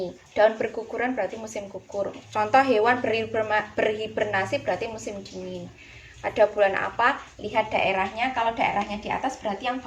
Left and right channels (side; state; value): both; identical; correlation 1.00